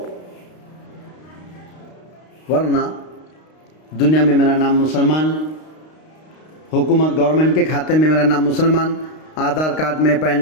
ورنہ دنیا میں میرا نام مسلمان، حکومت گورنمنٹ کے کھاتے میں میرا نام مسلمان، آدھار کارڈ میں،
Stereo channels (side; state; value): right; late; 32 ms